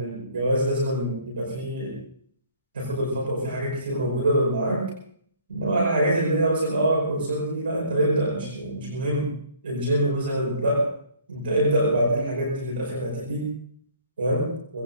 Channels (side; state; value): both; inverted; correlation -0.57